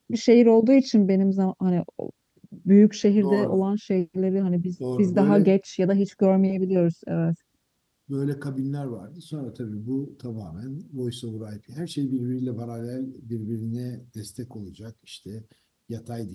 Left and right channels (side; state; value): both; identical; correlation 1.00